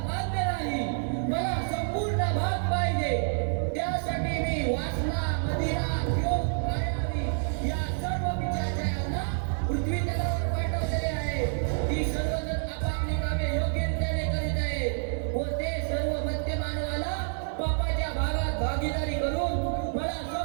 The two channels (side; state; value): left; silent; 59 dB below the other